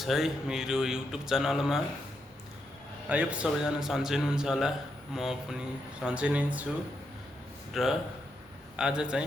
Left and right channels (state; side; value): normal; both; correlation 0.82